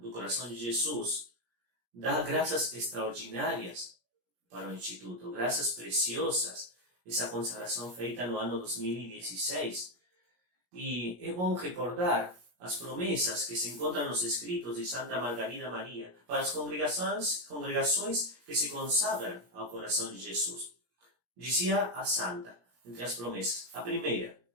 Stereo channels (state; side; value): late; left; 17 ms